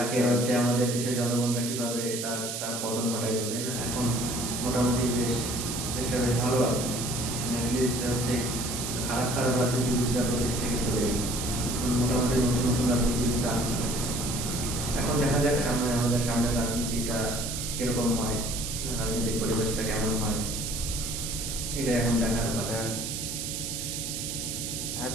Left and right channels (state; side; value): noise; right; hiss, 4 dB below the sound